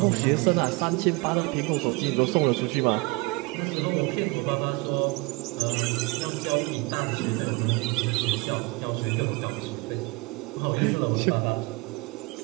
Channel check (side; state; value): left; quieter; 25.4 dB